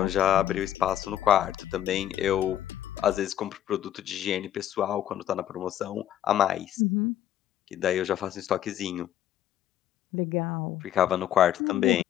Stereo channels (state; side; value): quieter; right; 11.6 dB